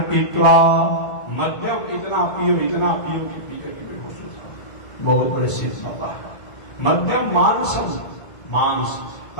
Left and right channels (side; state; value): right; late; 1.7 ms